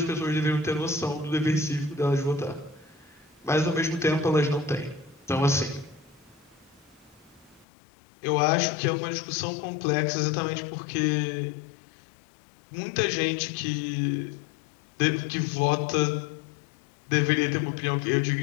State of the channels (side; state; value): right; drops out; at 7.7 s